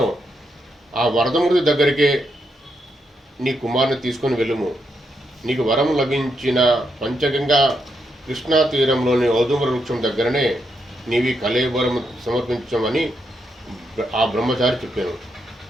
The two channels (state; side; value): normal; both; correlation 0.81